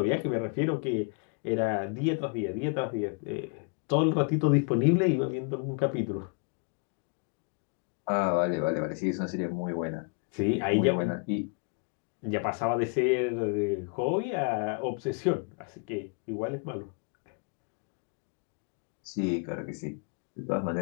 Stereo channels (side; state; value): right; quieter; 37.1 dB